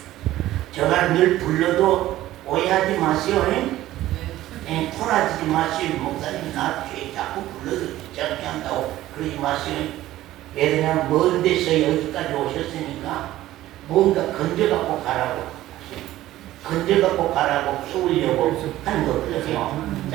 제가 늘 불러도 오해하지 마세요. 토라지지 마세요. 목사님 나 자꾸 불러도 귀찮게 한다고 그러지 마세요. 왜냐면 먼 데서 여기까지 오셨으니까 뭔가 건져갖고 가라고 키우려고 하는 거거든요.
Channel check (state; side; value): quieter; left; 14.9 dB